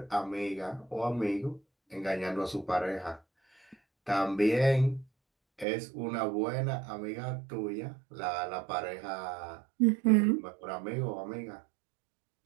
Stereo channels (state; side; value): drops out; left; at 5.7 s